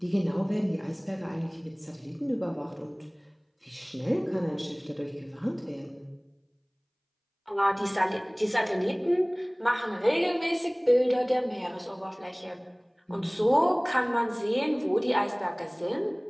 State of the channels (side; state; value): both; identical; correlation 1.00